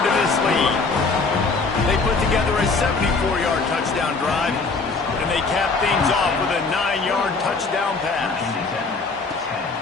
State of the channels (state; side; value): quieter; right; 4.2 dB